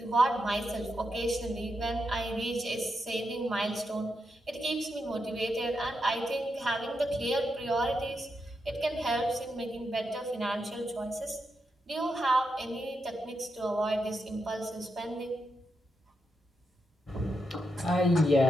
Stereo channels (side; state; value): both; normal; correlation 0.84